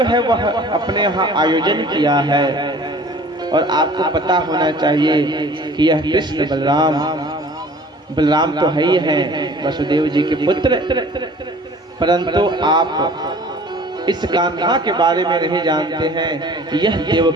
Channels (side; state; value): both; normal; correlation 0.48